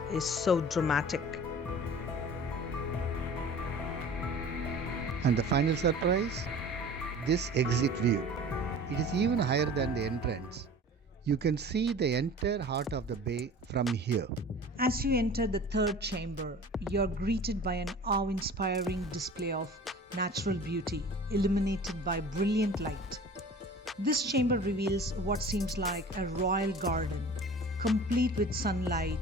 is so dramatic. And the final surprise? This exit view. It is even higher than the entrance. You can see the entire heart of the bay from here. As you enter the third chamber, you're greeted by an awe-inspiring display of natural beauty illuminated by brilliant light. This chamber reveals what seems like a royal garden, complete with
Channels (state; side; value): normal; both; correlation 0.42